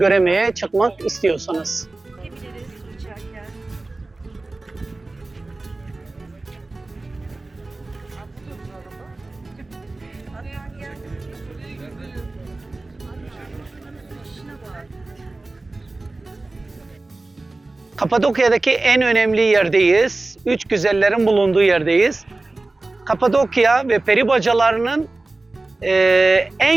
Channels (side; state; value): left; quieter; 3.2 dB